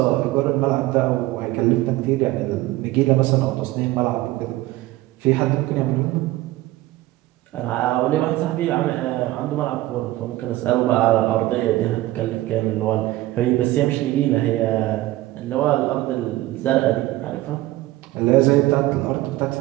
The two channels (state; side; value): quieter; left; 17.1 dB